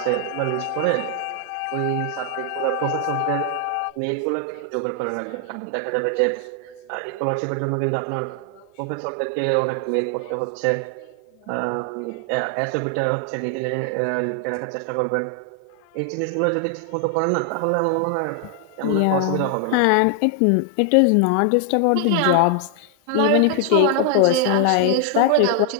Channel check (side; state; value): both; different; correlation 0.00